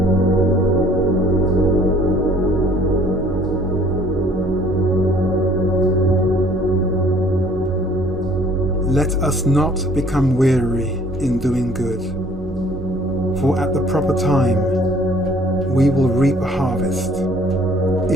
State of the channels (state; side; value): normal; both; correlation 0.56